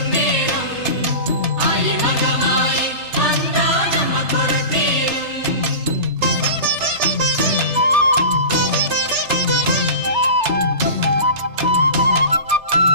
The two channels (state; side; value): late; left; 3.3 ms